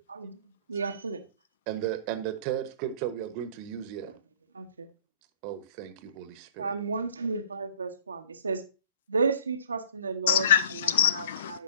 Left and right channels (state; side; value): inverted; both; correlation -0.48